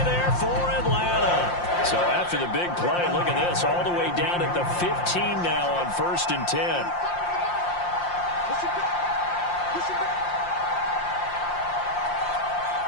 there for Atlanta. So after the big play, look at this, all the way down at the 15 now on 1st and 10.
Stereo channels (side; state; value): right; late; 5.7 ms